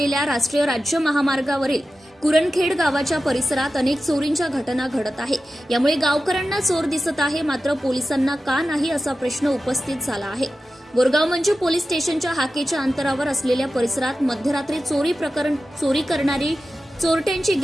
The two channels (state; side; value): normal; both; correlation 0.94